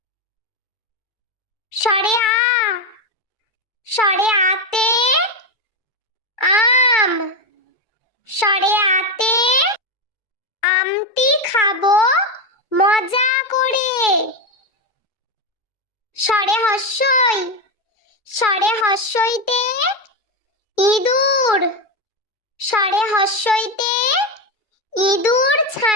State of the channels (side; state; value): right; late; 2.3 ms